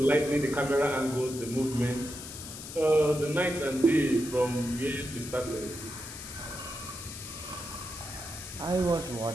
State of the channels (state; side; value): noise; left; hiss, 11 dB below the sound